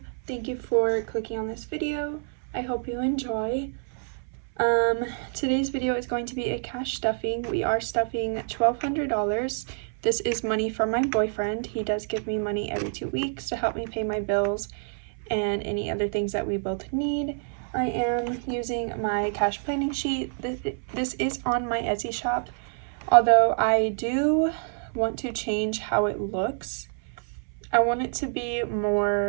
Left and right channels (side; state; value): left; silent; 60 dB below the other